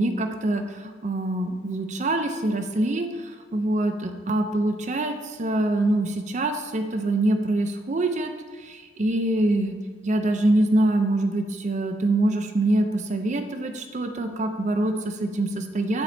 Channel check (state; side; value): normal; both; correlation 0.77